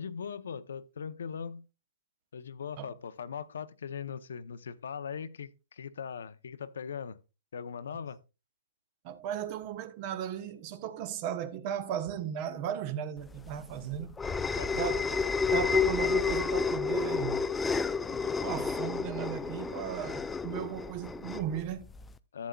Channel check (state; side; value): normal; both; correlation 0.46